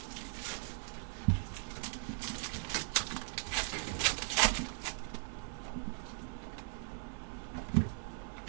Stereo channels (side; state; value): left; silent; 52 dB below the other